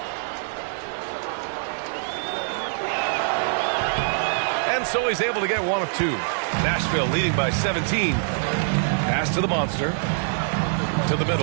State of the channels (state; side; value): silent; left; digital silence